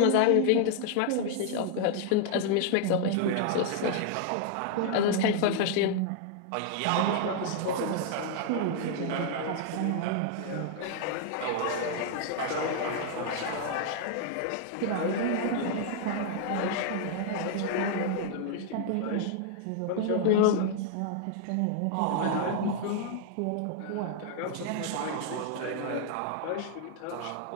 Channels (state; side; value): different; both; correlation 0.00